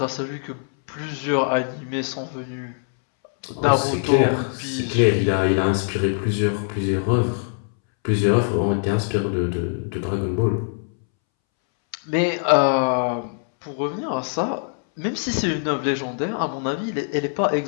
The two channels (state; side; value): silent; right; 64 dB below the other